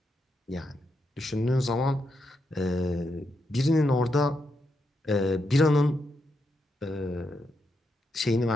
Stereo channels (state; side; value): normal; both; correlation 0.83